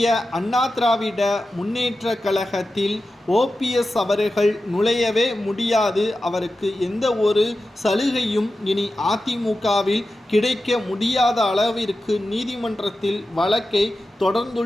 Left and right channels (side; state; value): both; normal; correlation 0.92